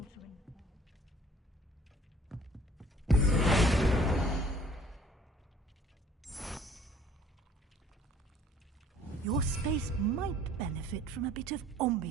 Your space might benefit from a bit of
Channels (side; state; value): both; normal; correlation 0.56